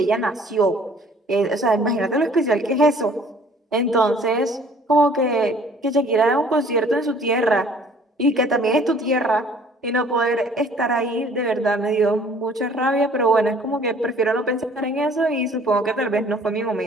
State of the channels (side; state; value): both; normal; correlation 0.55